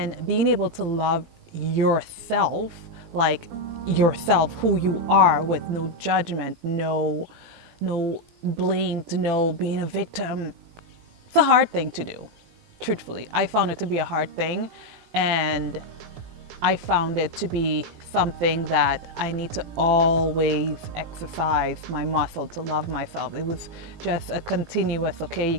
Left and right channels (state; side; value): late; left; 18 ms